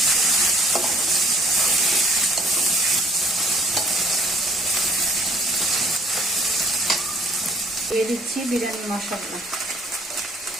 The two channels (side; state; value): both; normal; correlation 0.60